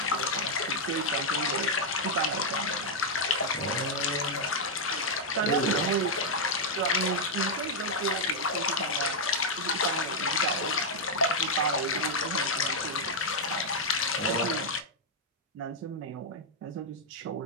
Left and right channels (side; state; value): both; normal; correlation -0.02